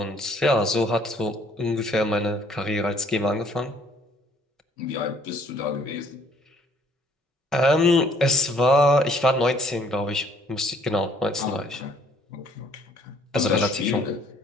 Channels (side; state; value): both; normal; correlation 0.61